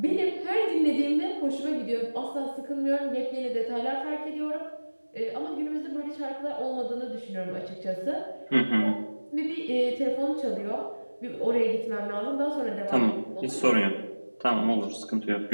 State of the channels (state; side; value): inverted; both; correlation -1.00